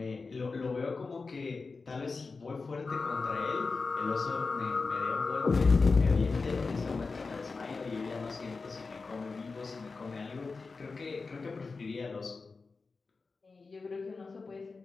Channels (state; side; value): quieter; right; 4.2 dB